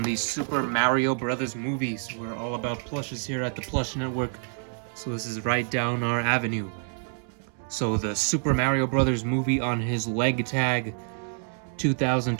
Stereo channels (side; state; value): left; silent; 56 dB below the other